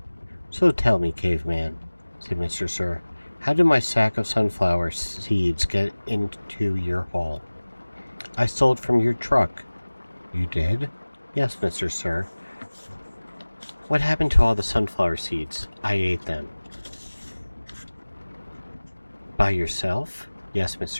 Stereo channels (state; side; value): inverted; both; correlation -1.00